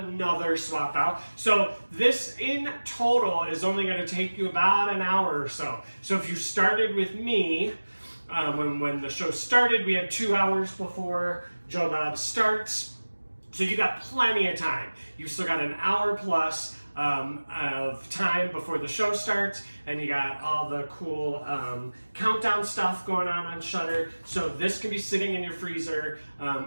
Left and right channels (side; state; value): both; inverted; correlation -1.00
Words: swap out. So this in total is only going to take you about an hour or so. So if you started with me, when the show started, we had 2 hours before Joe Bob starts. So you got plenty of time. You've still got an hour plus of time before the show starts, and you got all the cool countdown stuff going on Shudder. So this can be sitting in your freezer